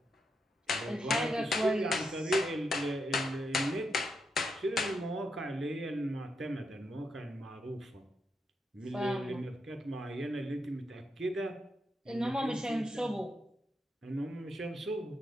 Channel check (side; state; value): both; normal; correlation 0.82